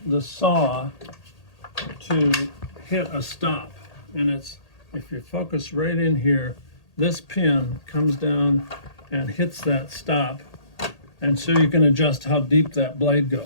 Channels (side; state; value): right; late; 1.8 ms